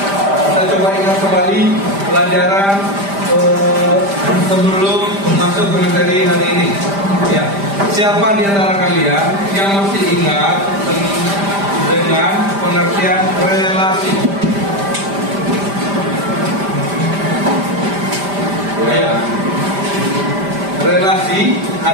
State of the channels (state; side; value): late; left; 5.0 ms